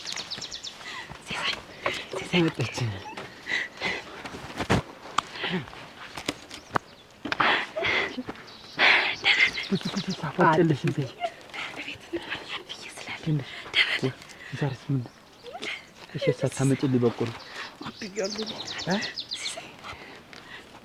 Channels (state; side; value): identical; both; correlation 1.00